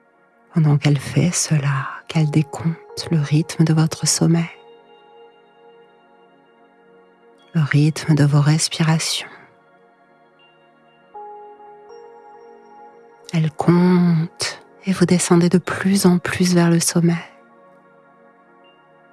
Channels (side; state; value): both; identical; correlation 1.00